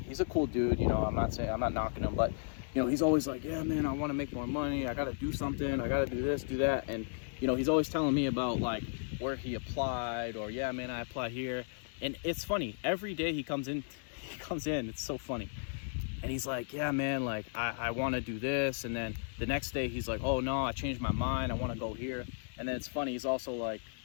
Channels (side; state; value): right; silent; 55 dB below the other